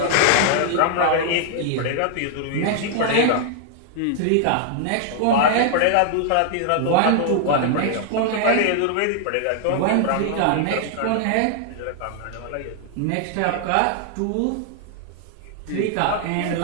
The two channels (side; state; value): both; different; correlation 0.00